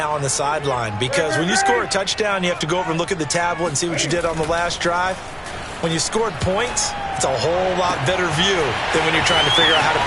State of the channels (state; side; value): identical; both; correlation 1.00